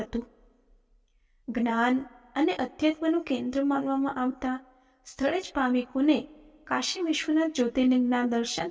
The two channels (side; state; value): both; identical; correlation 1.00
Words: જ્ઞાન અને અધ્યાત્મનું કેન્દ્ર માનવામાં આવતા સ્થળે જ ભાવિકોને કાશી વિશ્વનાથ જ્યોતિર્લિંગના દર્શન